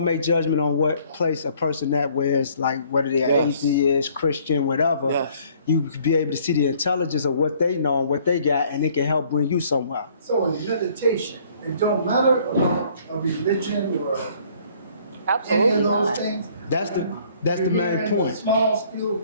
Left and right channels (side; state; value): both; inverted; correlation -0.60